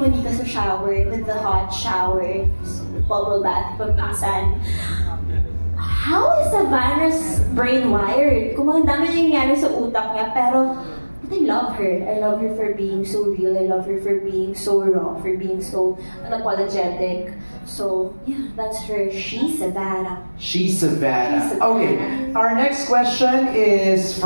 ka sa shower, with the hot shower, bubble bath pa minsan. How is Savannah's brain wired? Kung mga dami nangyayari sa utak niya, pero but I love her. I love her for being so real. I love her for being so raw, for being so unapologetic. So, yeah, that's her. She's Savannah. She's Savannah. Okay, our next question is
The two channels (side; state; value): both; inverted; correlation -1.00